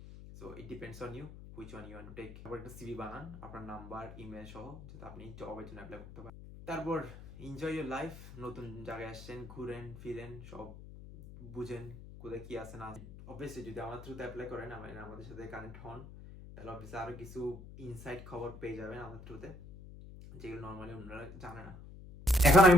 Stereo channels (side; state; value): left; noise; hum, 14 dB below the sound